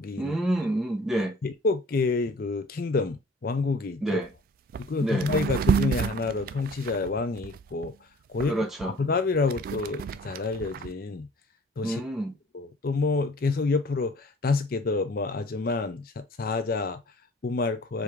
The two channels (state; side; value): normal; both; correlation 0.50